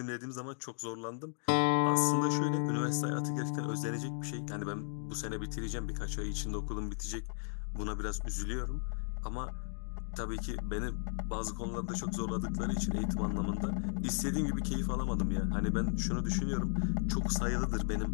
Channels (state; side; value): silent; right; digital silence